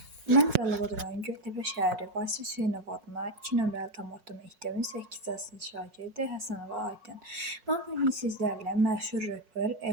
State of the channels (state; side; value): late; left; 5.5 ms